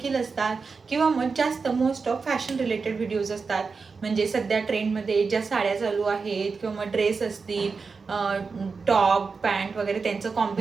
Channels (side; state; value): left; quieter; 4.8 dB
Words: असतात किंवा मग जास्त most of fashion related videos असतात. म्हणजे सध्या ट्रेंडमध्ये ज्या साड्या चालू आहेत किंवा मग ड्रेस असतील, टॉप पॅन्ट वगैरे त्यांचं